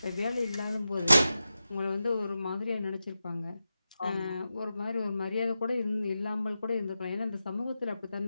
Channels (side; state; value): both; inverted; correlation -0.92